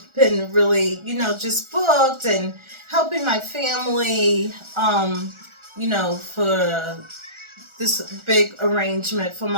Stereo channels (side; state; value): left; late; 1.4 ms